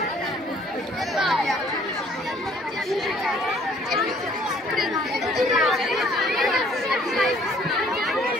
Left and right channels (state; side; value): normal; both; correlation 0.59